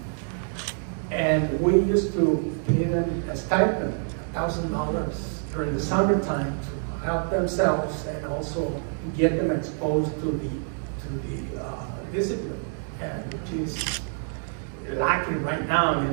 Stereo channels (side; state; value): left; silent; 60 dB below the other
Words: And we used to pay them a stipend, $1,000 during the summertime to help themselves and also get them exposed to the discipline, and which is lacking right now. I